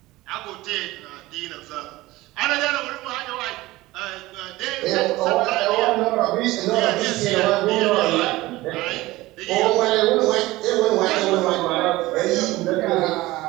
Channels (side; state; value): left; quieter; 18.8 dB